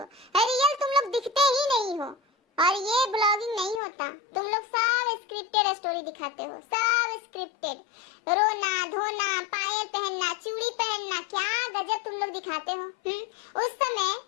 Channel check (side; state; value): right; drops out; at 3.8 s